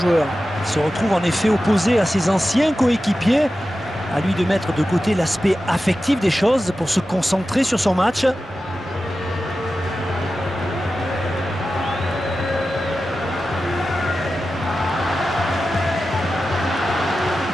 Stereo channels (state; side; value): normal; both; correlation 0.93